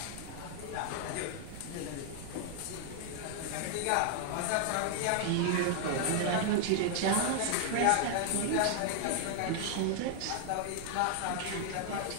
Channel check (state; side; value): different; both; correlation 0.00